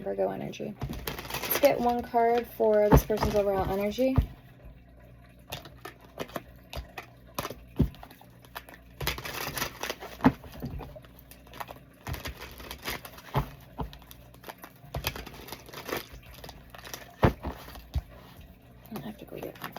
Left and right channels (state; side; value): identical; both; correlation 1.00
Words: energy. Let's get one card for this person's overall energy. I have to go get my